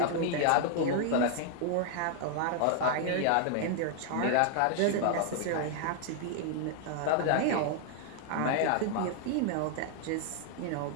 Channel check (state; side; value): different; both; correlation 0.00